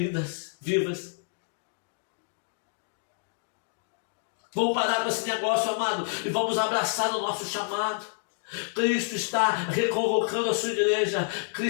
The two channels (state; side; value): silent; right; digital silence